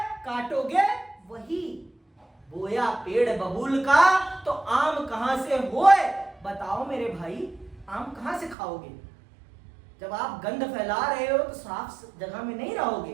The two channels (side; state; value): left; drops out; at 8.6 s